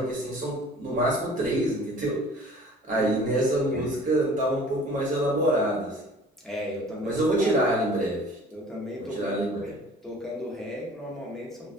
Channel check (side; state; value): both; normal; correlation 0.48